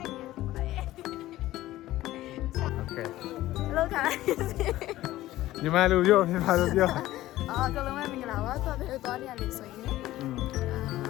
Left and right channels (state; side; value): quieter; right; 15.6 dB